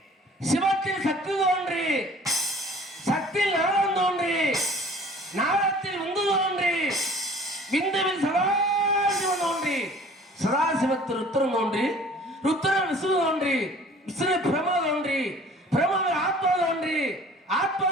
சிவத்தில் சக்தி தோன்றி, சக்தியில் நாரம் தோன்றி, நாரத்தில் விந்து தோன்றி, விந்துவில் சதாசிவன் தோன்றி, சதாசிவத்தில் ருத்திரன் தோன்றி, ருத்திரன் விஷ்ணு தோன்றி, விஷ்ணு பிரம தோன்றி, பிரமவில் ஆத்மா தோன்றி,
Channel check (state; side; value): normal; both; correlation 0.49